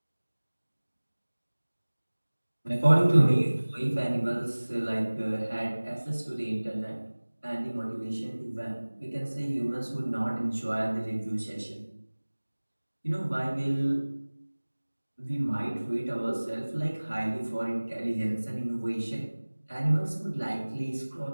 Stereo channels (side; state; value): both; inverted; correlation -1.00